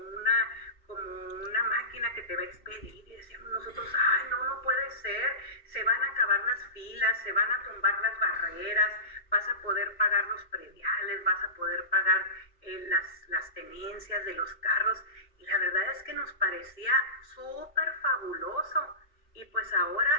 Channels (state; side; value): late; right; 2.8 ms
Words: una máquina que te va a expedir. Y decíamos nosotros, ay, no puede ser, se van a acabar las filas, se van a tumbar las barreras, vas a poder pagar los prediales, vas a poder pagar las tenencias de los carros. Y la verdad es que nos parecía súper fabuloso, y pues